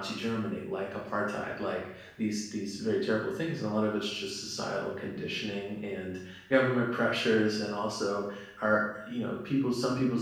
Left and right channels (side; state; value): both; identical; correlation 1.00